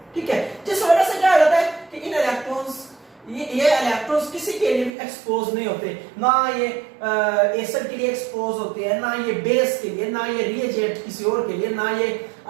ठीक है। जिस वजह से क्या हो जाता है कि इन इलेक्ट्रॉन्स, ये इलेक्ट्रॉन्स किसी के लिए भी एक्सपोज नहीं होते, ना ये एसिड के लिए एक्सपोज होते हैं, ना ये बेस के लिए, ना ये रिएजेंट किसी और के लिए, ना ये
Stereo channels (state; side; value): drops out; left; at 4.9 s